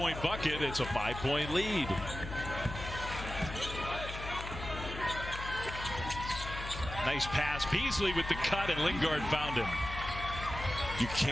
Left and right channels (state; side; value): noise; left; hum, 8 dB below the sound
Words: bucket. It's a 5-point lead. Nice pass. Beasley with the cut, and Lingard found him. You